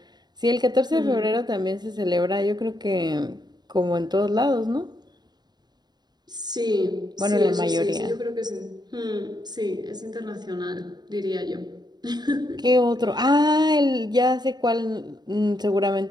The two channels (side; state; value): left; late; 0.20 ms